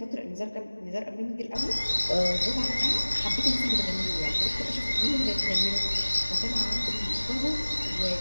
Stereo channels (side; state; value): both; inverted; correlation -1.00